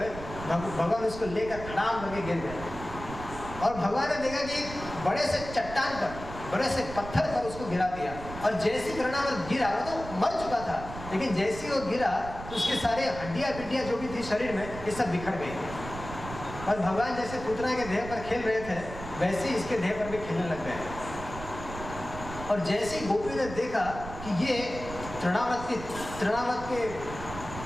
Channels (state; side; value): noise; right; rumble, 11 dB below the sound